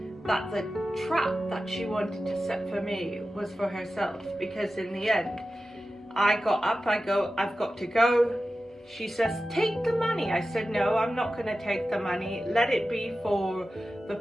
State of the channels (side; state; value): both; normal; correlation 0.94